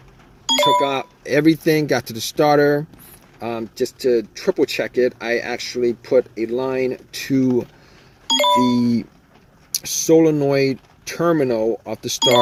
Took out everything, got to the starter. Just to triple check it, I actually put a line to the solenoid terminal of the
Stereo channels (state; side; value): identical; both; correlation 1.00